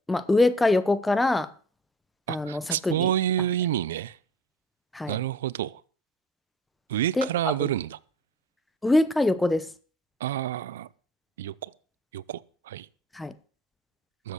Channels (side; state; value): both; normal; correlation 0.50